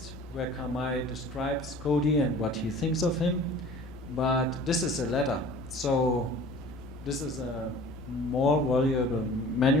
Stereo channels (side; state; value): both; normal; correlation 0.45